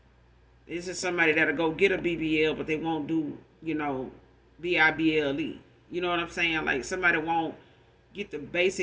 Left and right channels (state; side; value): identical; both; correlation 1.00